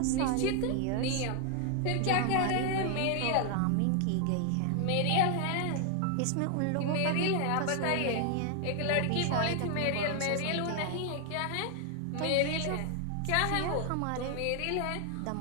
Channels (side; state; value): both; different; correlation 0.00